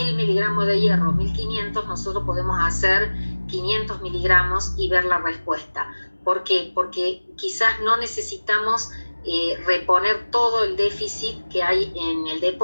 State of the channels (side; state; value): both; inverted; correlation -1.00